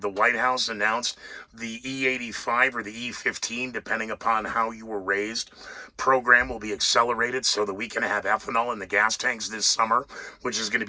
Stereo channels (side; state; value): both; identical; correlation 1.00